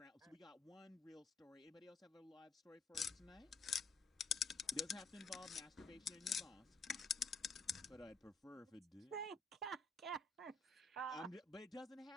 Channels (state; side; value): quieter; right; 3.4 dB